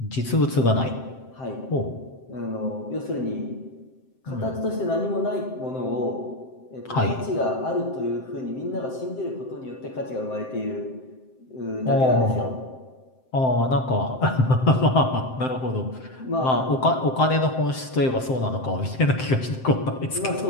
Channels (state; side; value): late; right; 7.7 ms